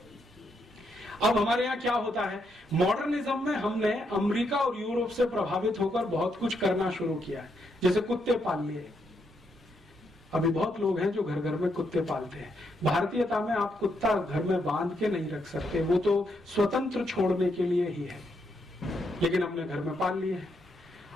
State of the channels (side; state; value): both; normal; correlation 0.78